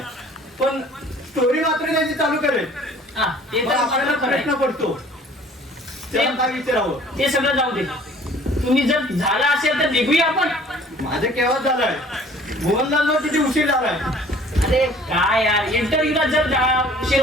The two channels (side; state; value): both; normal; correlation 0.52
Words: पण स्टोरी मात्र त्याची चालू करेल. हा ते मग तर आपल्याला आपल्याला प्रश्न करायचं. पडतो त्याला काय विचारावं. ते सगळं जाऊ दे. तुम्ही जर झाला असेल तर निघूया आपण. माझं केव्हा झालंय, मोहनलाल किती उशीर झालाय. अरे काय यार इंटरव्ह्यूला जर उशीर